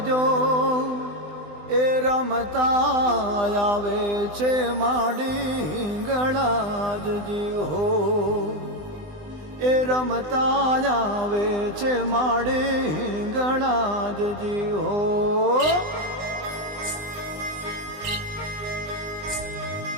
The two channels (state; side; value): late; left; 20 ms